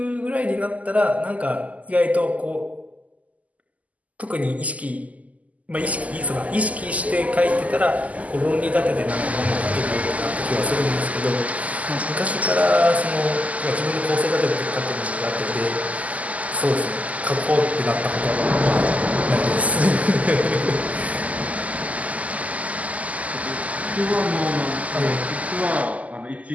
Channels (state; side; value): late; left; 0.073 ms